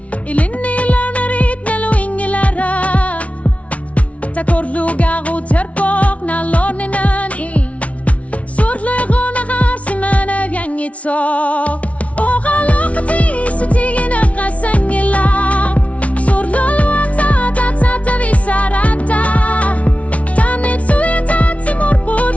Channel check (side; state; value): right; late; 0.065 ms